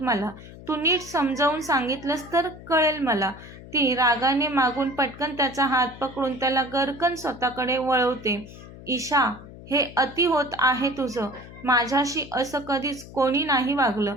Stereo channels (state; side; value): noise; left; hum, 16 dB below the sound